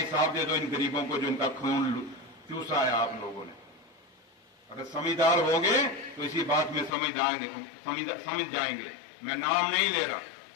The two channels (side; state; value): right; drops out; at 6.9 s